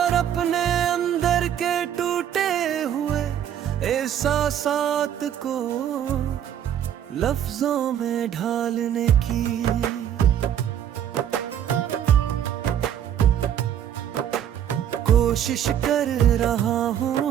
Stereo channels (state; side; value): quieter; left; 9.9 dB